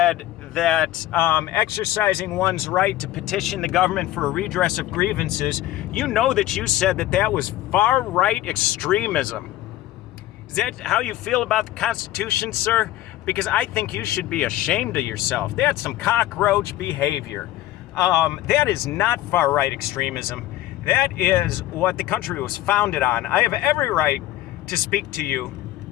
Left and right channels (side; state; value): right; quieter; 14.7 dB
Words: that exercising one's right to petition the government for a redress of grievances, you know that you said that that was far-right extremism. Is that how you feel about the Constitution, sir? Because I think you should be ashamed of yourself. That's some cockroach behavior. That is not far-right extremism. That is what the country was founded on. I have every right to speak to you